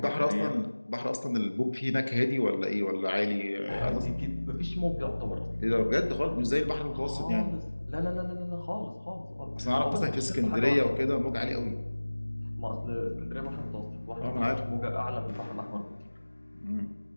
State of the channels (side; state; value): both; inverted; correlation -1.00